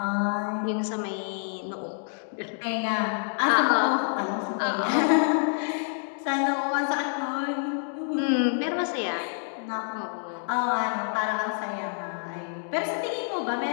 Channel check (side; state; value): right; silent; 60 dB below the other